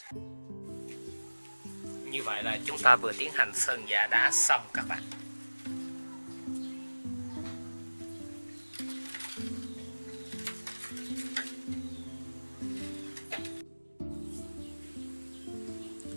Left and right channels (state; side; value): inverted; both; correlation -1.00